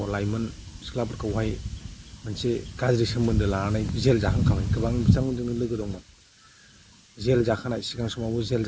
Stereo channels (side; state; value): both; identical; correlation 1.00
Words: लाइमोन सिख्लाफोरखौहाय मोनसे गाज्रि सोमोन्दो लानानै जेल जाखांखाबाय गोबां बिथांमोनजोंनो लोगो दंमोन जेल जाखानाय सिगां समावबो जेल